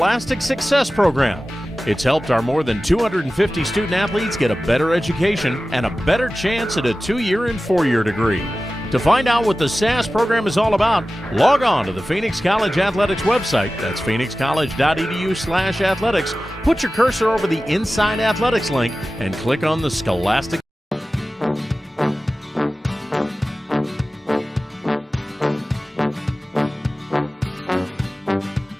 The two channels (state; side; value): normal; both; correlation 0.95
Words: Success Program. It's helped our more than 250 student-athletes get a better education and a better chance at a 2-year and 4-year degree. To find out what the SAS program is all about, log on to the Phoenix College Athletics website. That's phoenixcollege.edu/athletics. Put your cursor over the Inside Athletics link and click on the Scholastic.